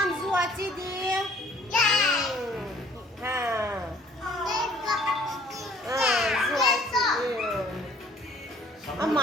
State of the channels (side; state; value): both; normal; correlation 0.56